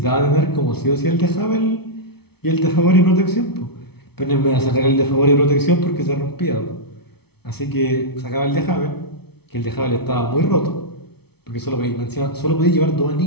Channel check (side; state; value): right; late; 0.97 ms